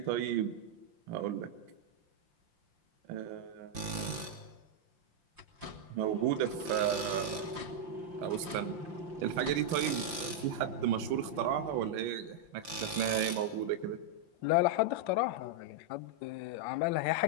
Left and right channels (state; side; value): late; left; 5.9 ms